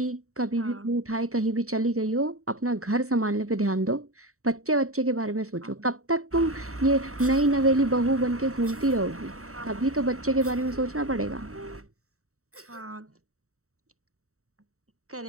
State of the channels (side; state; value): left; late; 0.64 ms